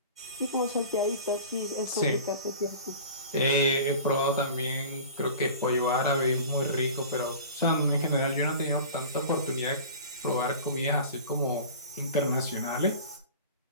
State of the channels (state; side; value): inverted; both; correlation -0.39